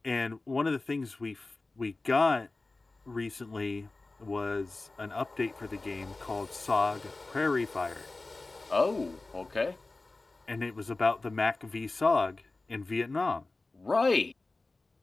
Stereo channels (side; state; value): right; quieter; 3.3 dB